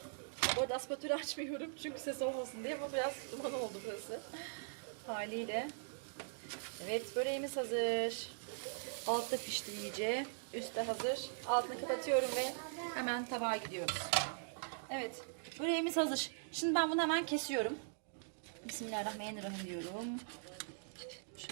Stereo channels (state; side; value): silent; left; digital silence